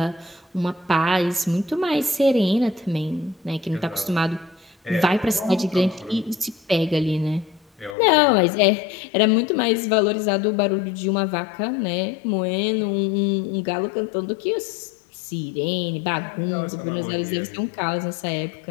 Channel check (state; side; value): drops out; right; at 8.0 s